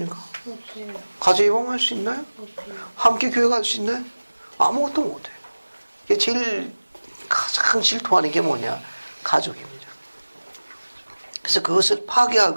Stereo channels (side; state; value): both; inverted; correlation -1.00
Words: 없어요. 가족 예방할 수 있나요? 없어요. 함께 교회 갈 수 있나요? 아무것도 못해요. 이게 제일 가장 질투하는 게 뭐냐? 가족입니다. 그래서 그것을